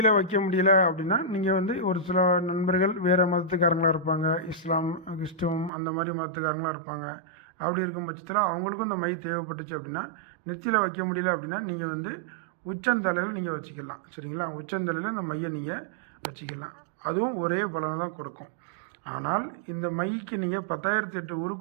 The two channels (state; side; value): drops out; left; at 5.7 s